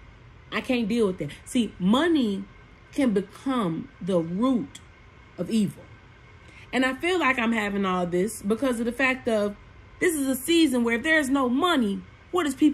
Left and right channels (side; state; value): both; identical; correlation 1.00